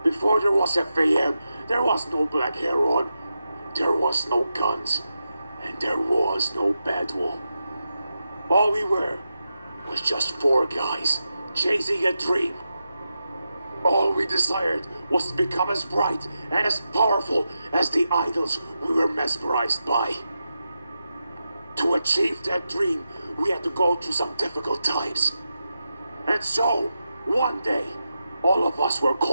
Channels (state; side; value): inverted; both; correlation -0.89